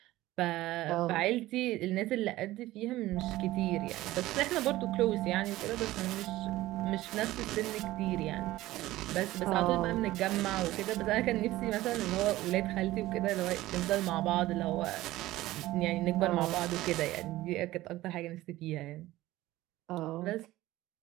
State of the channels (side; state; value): left; quieter; 16.7 dB